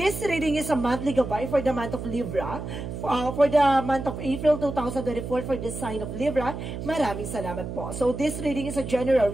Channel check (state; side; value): noise; right; hum, 7 dB below the sound